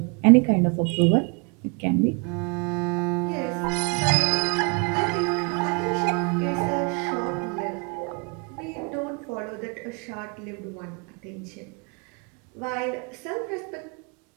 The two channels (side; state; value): left; quieter; 33.4 dB